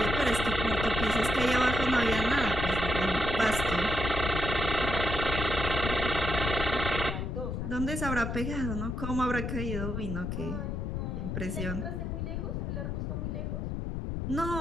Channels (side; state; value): left; noise; rumble, 3 dB below the sound